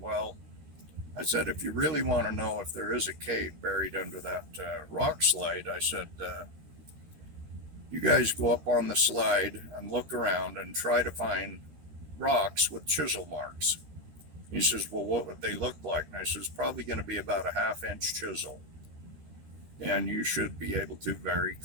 if you really want to know if there is a cave buried under that rock slide, I said, you guys go up on the slide and look around and try to find rocks with chisel marks. He says, well, what would they look like? And I says, probably going to be about a 1/2-inch chisel. And you should be able to very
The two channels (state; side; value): late; left; 13 ms